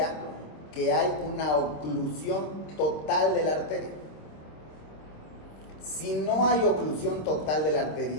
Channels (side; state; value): right; late; 26 ms